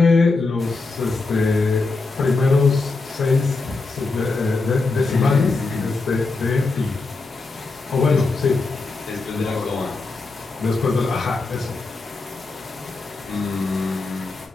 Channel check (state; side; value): quieter; right; 3.6 dB